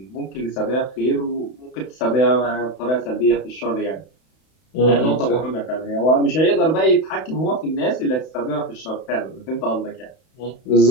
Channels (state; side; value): late; right; 31 ms